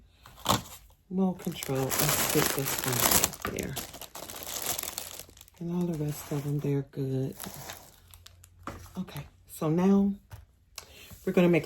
No control. Let's get this one right there. And all the rest of them, they're good. Okay, so now we're going to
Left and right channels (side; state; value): both; identical; correlation 1.00